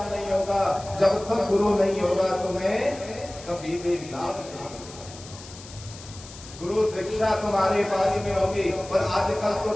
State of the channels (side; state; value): left; noise; hiss, 17 dB below the sound